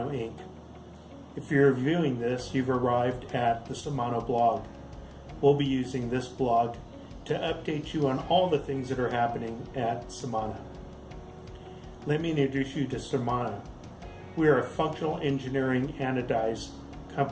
Inc. If you're viewing this, you've arrived at the Semano blog. We'll be using this blog to update you on all the things that are happening at Semano. Let me introduce you to Semano. We are a functional engineering anodized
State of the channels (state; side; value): identical; both; correlation 1.00